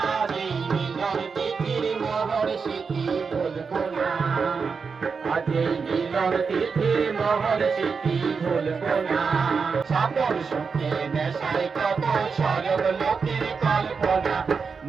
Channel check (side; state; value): left; quieter; 5.3 dB